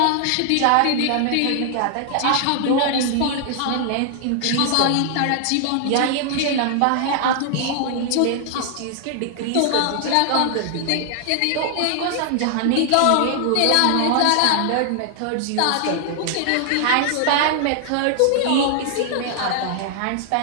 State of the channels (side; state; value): both; different; correlation 0.00